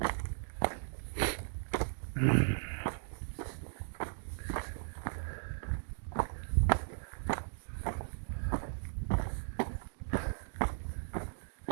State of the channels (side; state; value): left; silent; digital silence